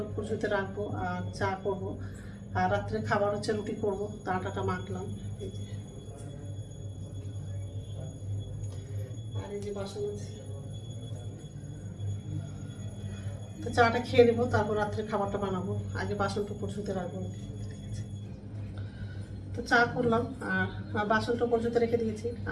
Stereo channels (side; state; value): both; identical; correlation 1.00